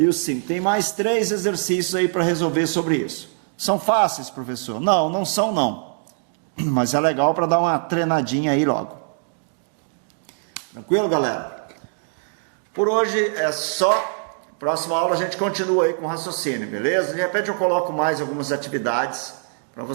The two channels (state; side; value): silent; left; digital silence